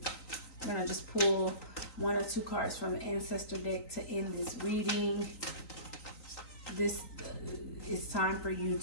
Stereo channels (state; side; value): late; right; 3.9 ms